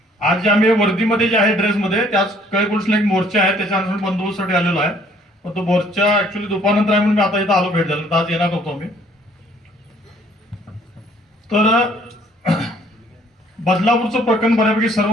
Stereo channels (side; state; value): both; normal; correlation 0.61